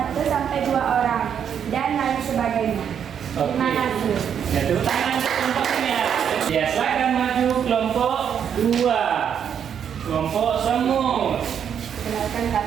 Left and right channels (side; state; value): left; quieter; 8.3 dB